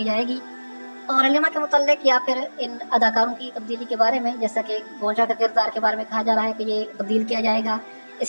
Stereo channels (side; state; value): both; inverted; correlation -1.00